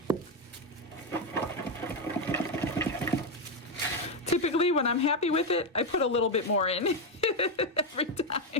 Typically, when I'm happy with it, I put a little bit more in every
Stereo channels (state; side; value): normal; both; correlation 0.06